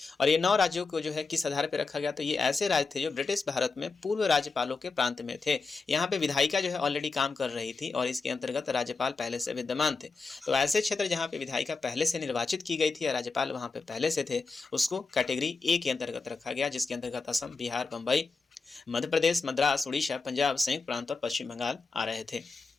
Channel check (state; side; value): quieter; right; 4.2 dB